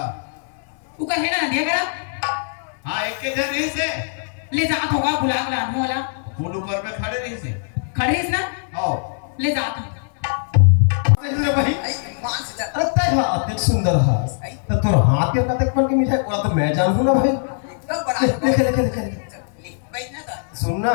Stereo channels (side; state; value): right; silent; 65 dB below the other